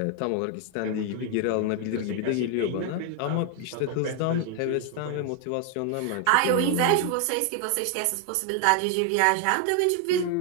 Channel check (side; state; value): both; different; correlation 0.00